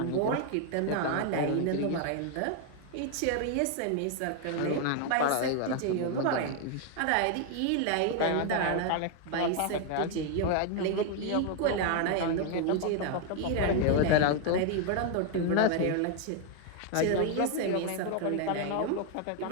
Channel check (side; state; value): both; different; correlation 0.01